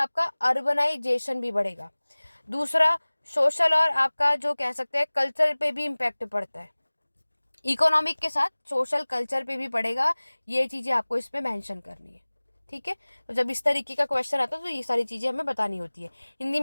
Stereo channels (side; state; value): both; inverted; correlation -1.00